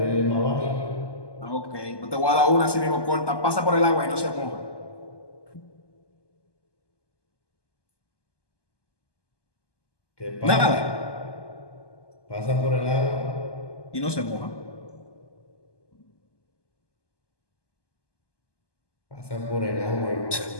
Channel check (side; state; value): right; late; 1.2 ms